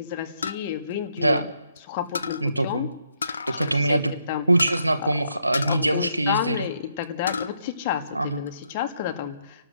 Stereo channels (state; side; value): inverted; both; correlation -0.75